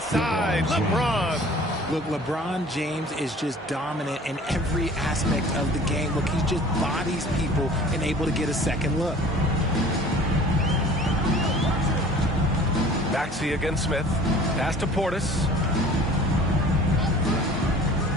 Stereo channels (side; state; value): both; normal; correlation 0.47